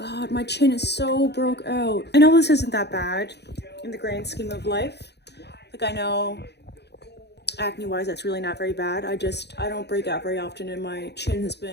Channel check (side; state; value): right; late; 0.49 ms